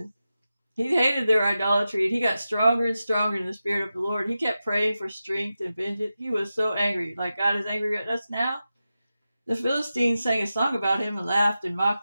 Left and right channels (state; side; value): inverted; both; correlation -0.92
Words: He hated their idolatry, and he got stronger and stronger in the spirit of the Lord. He kept praying for strength and vengeance. He was so angry, like God is angry at us now. The Philistines sang a song about him and laughed and